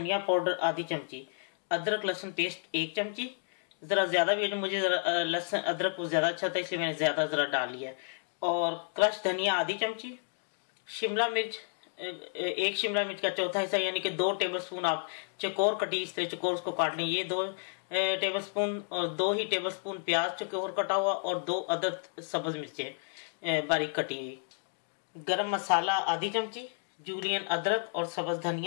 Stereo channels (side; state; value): right; silent; 57 dB below the other